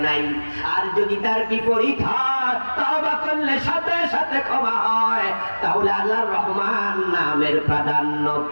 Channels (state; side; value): inverted; both; correlation -1.00